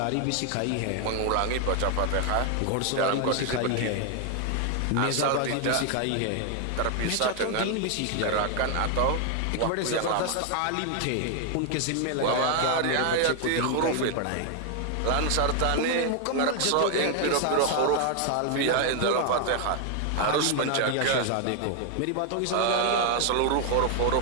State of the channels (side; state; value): both; different; correlation 0.00